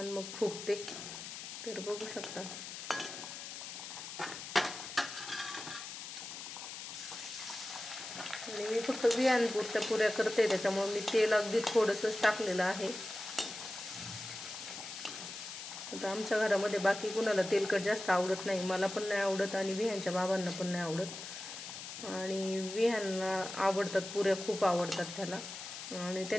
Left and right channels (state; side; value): noise; left; hiss, 9 dB below the sound